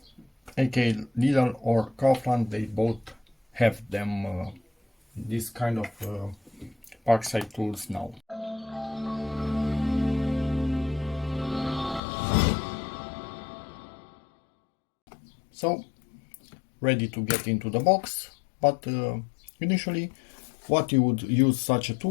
aka Lidl or Kaufland. They both have them, this kind of PARKSIDE tools now. So, ready to get into the box, but initially what you would use such a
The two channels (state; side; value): drops out; right; at 12.0 s